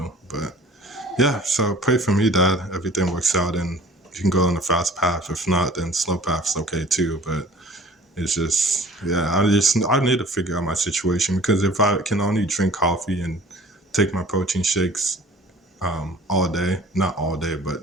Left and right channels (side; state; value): both; normal; correlation 0.48